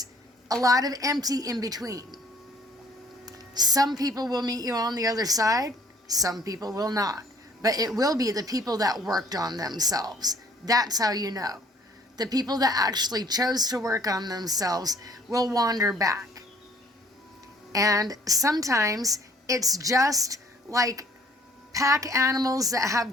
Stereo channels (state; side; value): normal; both; correlation 0.58